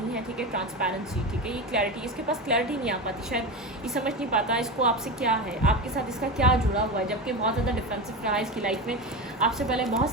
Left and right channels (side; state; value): both; normal; correlation 0.22